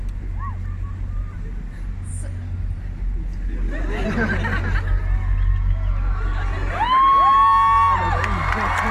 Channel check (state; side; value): identical; both; correlation 1.00